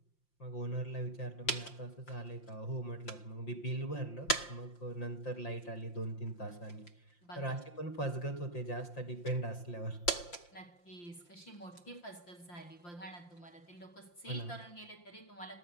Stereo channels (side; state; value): right; late; 5.7 ms